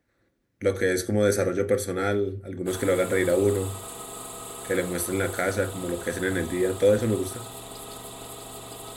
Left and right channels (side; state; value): both; identical; correlation 1.00